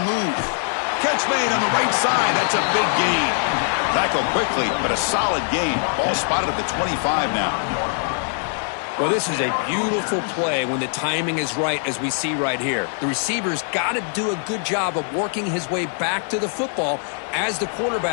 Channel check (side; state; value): right; silent; 59 dB below the other